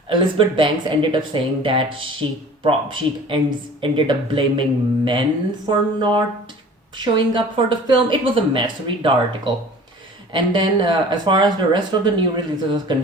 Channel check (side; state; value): both; normal; correlation 0.44